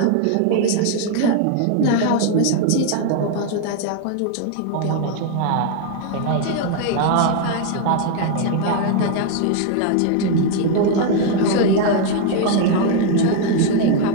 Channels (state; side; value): different; both; correlation 0.00